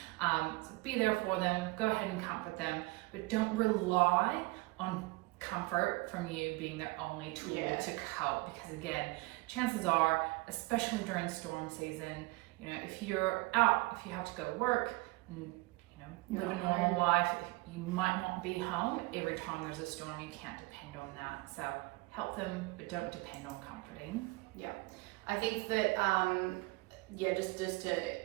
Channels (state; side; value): quieter; left; 23.6 dB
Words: So be there for them, go ahead and comfort them, but don't rely on comfort from you being their only tool to cope, because again, chances are, especially during storm season, if you're out, if you have to go work and live a normal life, you might not be home every time there's a storm. You can't depend on that. So help them, but don't depend on comforting. Yeah, I think that just to